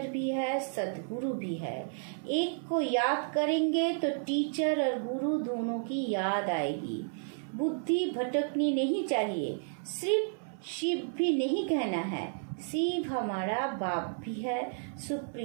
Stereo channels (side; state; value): left; silent; 56 dB below the other